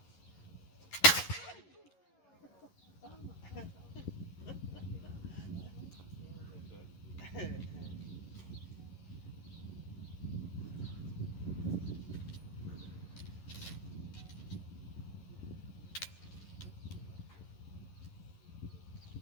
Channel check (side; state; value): right; late; 11 ms